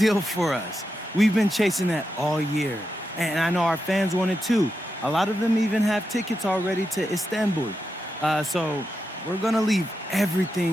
for us. We've been chasing that all year. And I know our fans want it too. A lot of them even have tickets already to Istanbul. So we're gonna leave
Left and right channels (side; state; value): both; normal; correlation 0.87